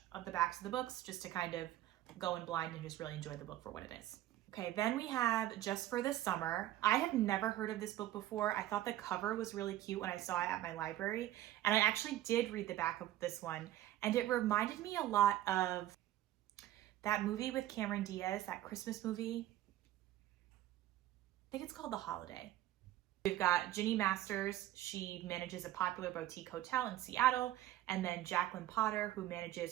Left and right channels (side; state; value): left; quieter; 14.0 dB